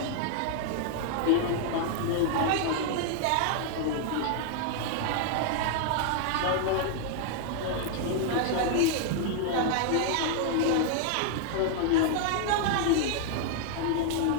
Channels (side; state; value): both; different; correlation 0.00